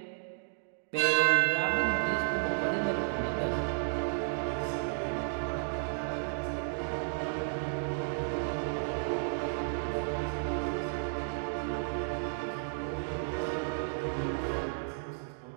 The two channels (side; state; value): left; silent; digital silence